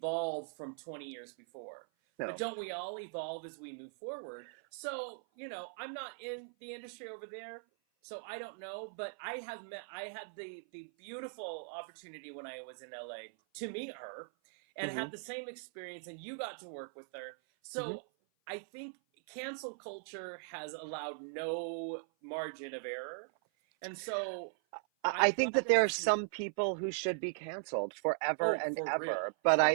from 20 years before. But no, don't we all evolve as we move forward? So, I'm not in the industry over there, so I don't know, but I had the beautiful opportunity when I was in LA to meet her and mhm, had the same experience, and you got to work with her. mhm. So I think cancel culture has allowed no margin of error. And so I I'm think glad that that there are it's, some people who should be canceled forever oh, and for real. ever. But For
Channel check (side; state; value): left; silent; 52 dB below the other